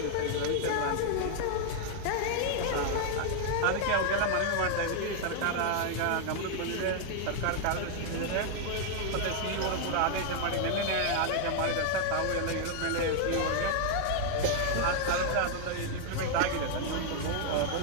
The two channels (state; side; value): different; both; correlation 0.00